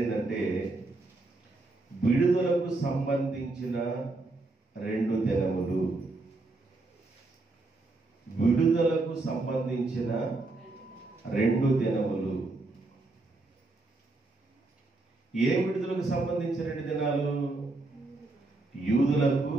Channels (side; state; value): left; quieter; 3.2 dB